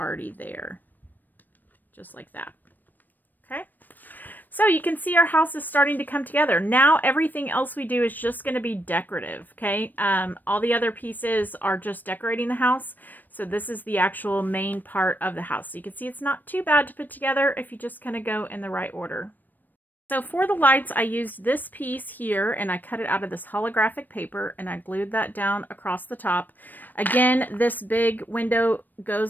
there. Just like that. Okay. So you can see our house is starting to come together. Now everything else we do is just going to be decorative, okay? All the other pieces are just decorating the house. So this is the actual main part of the house. So you can see it's not too bad to put together if you just kind of go in the right order. So for the lights, I used this piece here, and I cut it out of this holographic paper, and I glued that down across the top. Again, this big window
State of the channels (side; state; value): right; late; 0.089 ms